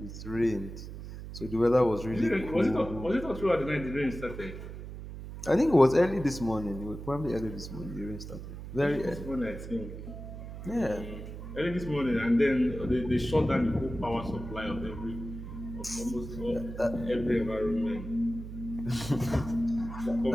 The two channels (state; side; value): noise; right; hum, 10 dB below the sound